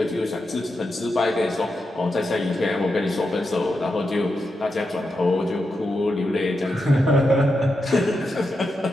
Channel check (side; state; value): both; normal; correlation 0.87